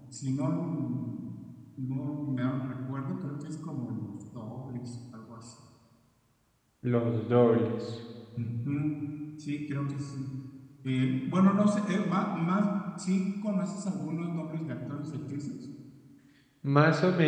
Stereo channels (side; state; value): both; identical; correlation 1.00